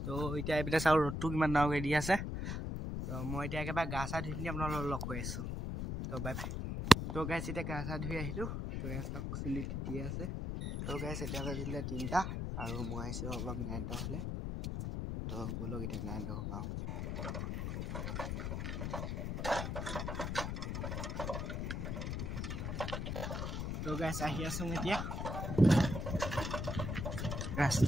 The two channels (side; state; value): left; noise; rumble, 2 dB below the sound